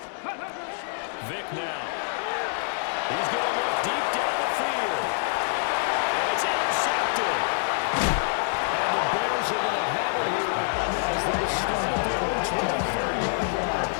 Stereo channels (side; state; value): right; silent; digital silence